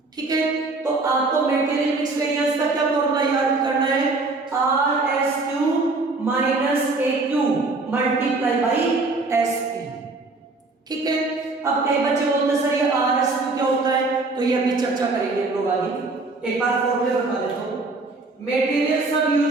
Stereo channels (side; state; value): left; quieter; 3.5 dB